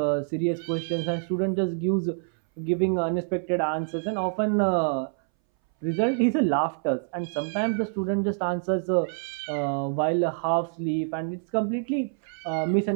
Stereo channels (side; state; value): left; silent; 61 dB below the other